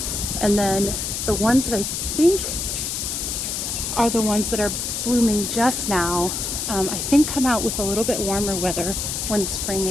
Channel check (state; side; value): noise; left; hiss, 3 dB below the sound